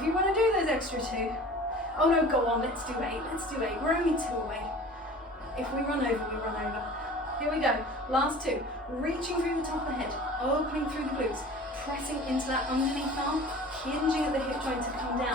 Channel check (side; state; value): both; normal; correlation 0.42